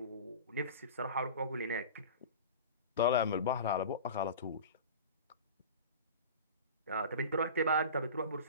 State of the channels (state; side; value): inverted; both; correlation -0.34